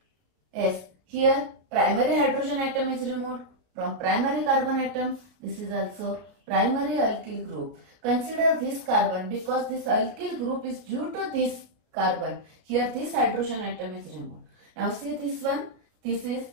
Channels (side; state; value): left; late; 33 ms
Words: Yes, here primary hydrogen atom is removed from primary carbon atom. This is also primary alkyl group. Consider this carbon because this alkyl group is due to this carbon. Here this hydrogen atom is removed. Now see this one. This is